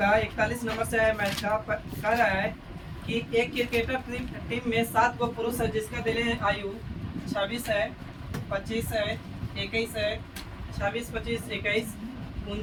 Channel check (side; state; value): both; identical; correlation 1.00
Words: 41 नंबर से है मैच का। कह रहा है कि एक क्रिकेटर टीम में 7 गो पुरुष है जिसका दिले आयु 26 है, 25 है, 21 है, 26, 25, 21,